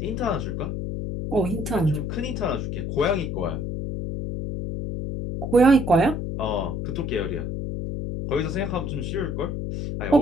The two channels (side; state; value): left; noise; hum, 3 dB below the sound